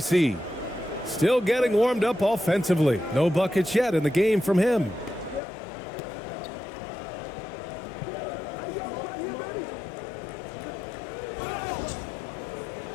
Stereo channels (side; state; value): right; drops out; at 5.4 s